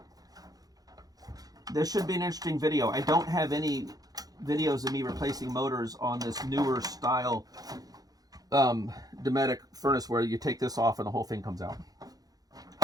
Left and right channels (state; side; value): late; left; 0.18 ms